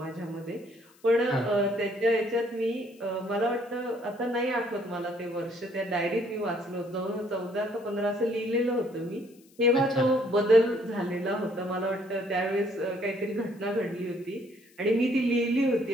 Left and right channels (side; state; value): left; noise; hiss, 30 dB below the sound